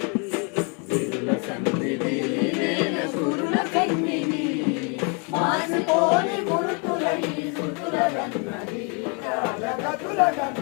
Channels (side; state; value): right; quieter; 35.5 dB